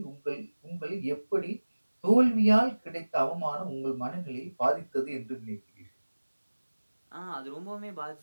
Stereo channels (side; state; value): both; inverted; correlation -1.00